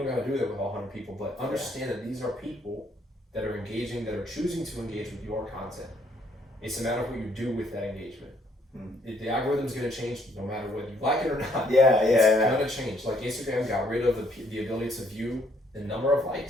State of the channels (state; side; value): normal; both; correlation 0.67